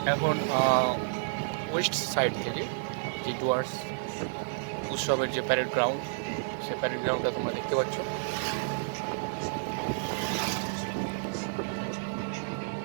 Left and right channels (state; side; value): silent; left; digital silence